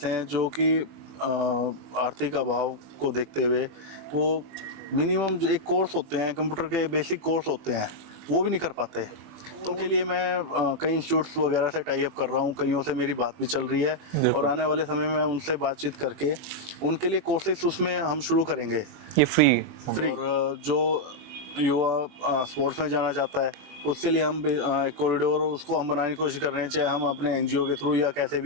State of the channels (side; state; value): left; late; 21 ms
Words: हैं जो कि आर्थिक अभाव को देखते हुए वो मिनिमम जो एक कोर्स होते हैं, कंप्यूटर के बेसिक कोर्स होते हैं, वो भी नहीं कर पाते। तो उनके लिए मैं कई इंस्टीट्यूट्स वगैरह से टाई अप कर रहा हूँ, कईयों से मेरी बात भी चल रही है और आने वाले समय में उनसे बातचीत करके उनके लिए कोर्सेज उसमें हम शुरू करेंगे, ये फ्री। और जो युवा स्पोर्ट्स में जाना चाहता है, उसके लिए हम एक कॉरिडोर उसको हम बनाने की कोशिश कर रहे हैं, चाहे हम अपने एनजीओ के थ्रू या कैसे